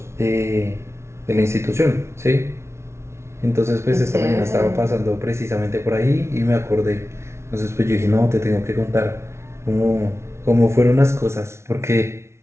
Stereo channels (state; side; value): late; left; 0.13 ms